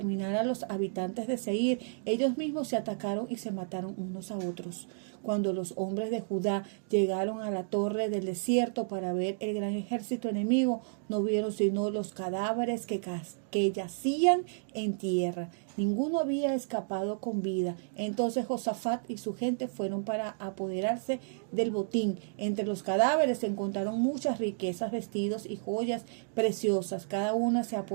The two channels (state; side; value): silent; left; digital silence